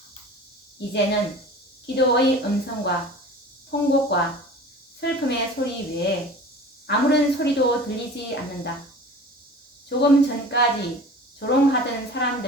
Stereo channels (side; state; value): both; normal; correlation 0.40